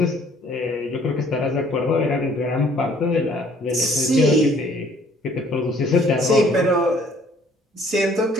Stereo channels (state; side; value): normal; both; correlation 0.59